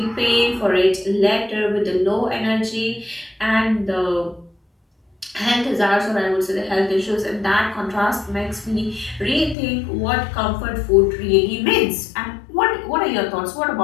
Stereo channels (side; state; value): right; drops out; at 9.6 s